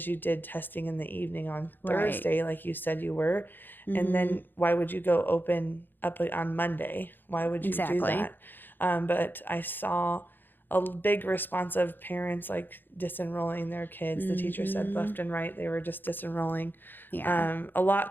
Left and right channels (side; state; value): right; late; 0.094 ms